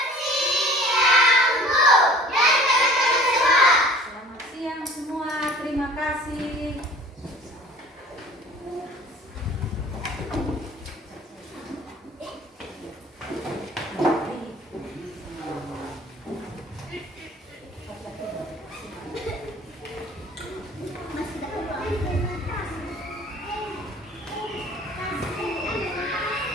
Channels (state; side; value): normal; both; correlation 0.47